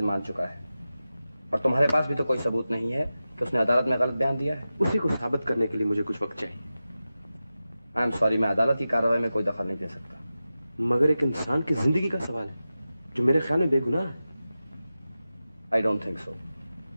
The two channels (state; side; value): inverted; both; correlation -0.94